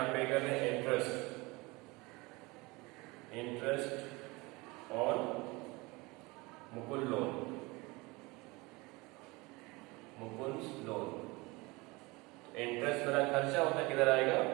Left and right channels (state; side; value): quieter; left; 24.1 dB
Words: पे कर रहे हैं? Interest on Mukul loan, Mukul loan. Interest मेरा खर्चा होता है, किधर आएगा?